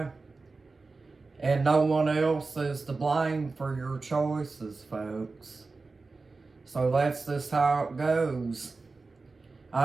And no one else is to blame for your choices, folks. So that's just how it goes.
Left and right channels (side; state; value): left; quieter; 3.9 dB